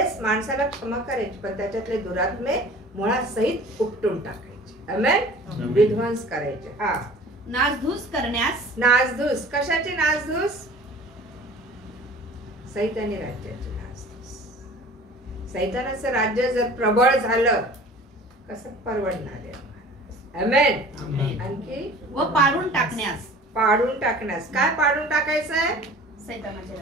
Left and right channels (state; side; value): normal; both; correlation 0.44